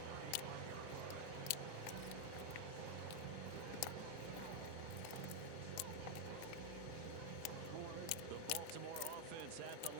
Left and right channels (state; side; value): different; both; correlation 0.00